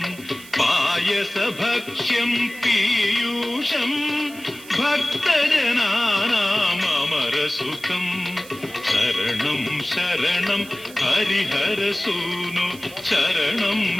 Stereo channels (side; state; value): right; noise; hiss, 19 dB below the sound